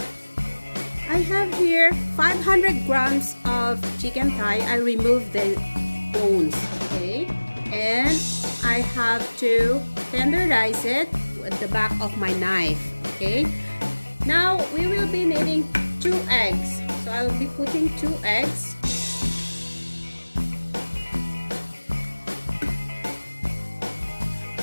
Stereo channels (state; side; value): inverted; both; correlation -1.00